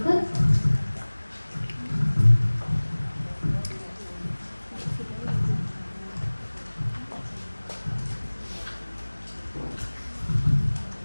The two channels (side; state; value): both; inverted; correlation -1.00